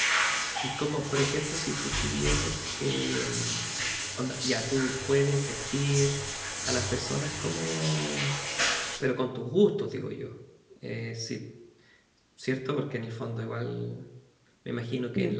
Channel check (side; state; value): both; identical; correlation 1.00